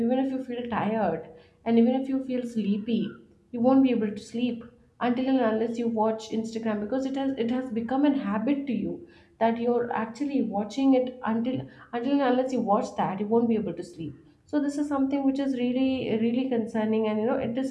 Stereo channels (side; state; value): both; identical; correlation 1.00